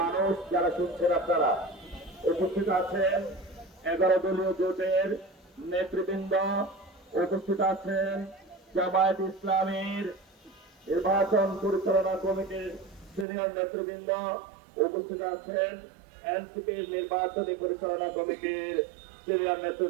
যারা শুনছেন, আপনারা উপস্থিত আছেন। 11 দলীয় জোটের নেতৃবৃন্দ উপস্থিত আছেন। জামায়াত ইসলামীর নির্বাচন পরিচালনা কমিটির সিনিয়র নেতৃবৃন্দ উপস্থিত আছেন। এনসিপির নির্বাচনী পরিচালনা কমিটির সিনিয়র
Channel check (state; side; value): drops out; left; at 13.2 s